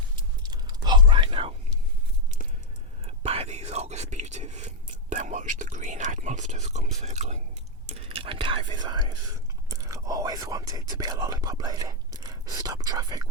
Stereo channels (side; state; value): both; normal; correlation 0.01